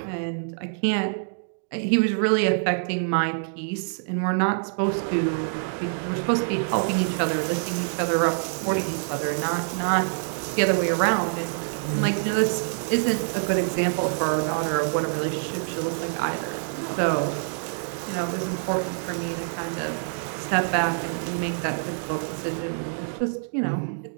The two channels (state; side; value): silent; left; digital silence